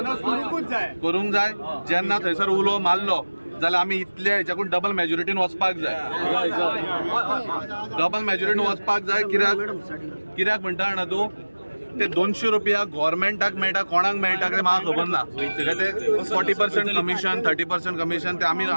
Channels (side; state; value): both; inverted; correlation -1.00